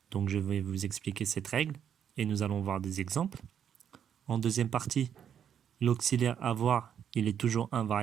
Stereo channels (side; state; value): left; quieter; 8.7 dB